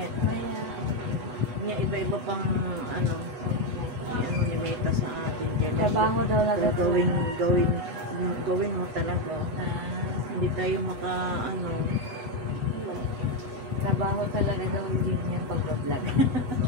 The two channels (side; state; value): left; late; 8.1 ms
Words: Maya. Niya iba-iba pang ano. Ano ni Meta sa atin dyan. Trabaho daw lang. Gawin mo talaga. Hindi tayo ano. Trabaho talaga daw din yan pag-vlog.